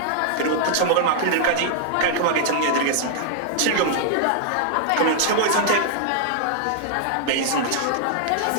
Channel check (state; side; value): different; both; correlation -0.01